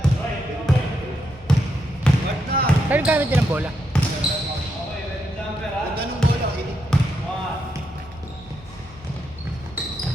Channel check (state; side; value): normal; both; correlation 0.81